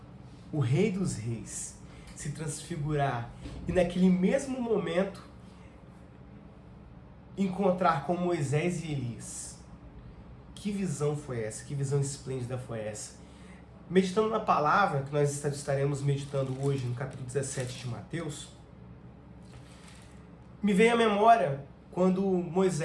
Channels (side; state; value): both; identical; correlation 1.00